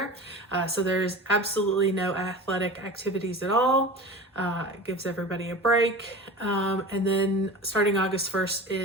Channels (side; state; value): both; normal; correlation 0.34